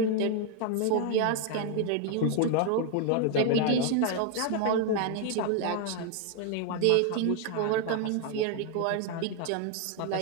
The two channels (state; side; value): different; both; correlation 0.01